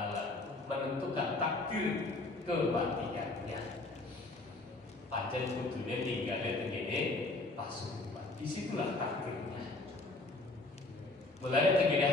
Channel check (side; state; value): right; quieter; 3.0 dB